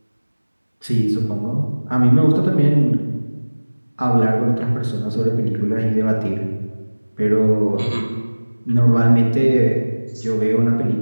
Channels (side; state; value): both; inverted; correlation -1.00